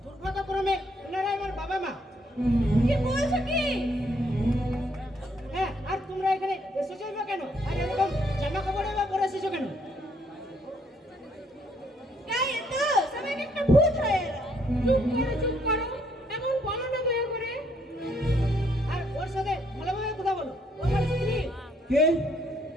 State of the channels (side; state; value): both; normal; correlation 0.69